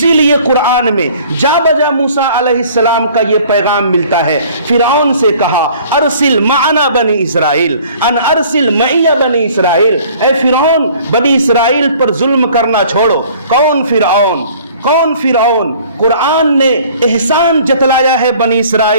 لیے قرآن میں جا بجا موسیٰ علیہ السلام کا یہ پیغام ملتا ہے۔ فرعون سے کہا ارسل معنا بنی اسرائیل، ان ارسل معی بنی اسرائیل، اے فرعون بنی اسرائیل پر ظلم کرنا چھوڑو۔ کون فرعون؟ کون فرعون؟ قرآن نے احسان جتلایا ہے بنی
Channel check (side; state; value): both; inverted; correlation -0.52